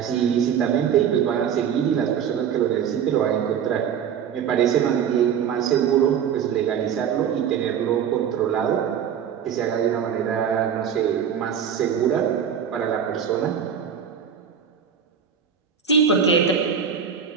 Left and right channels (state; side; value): quieter; left; 8.0 dB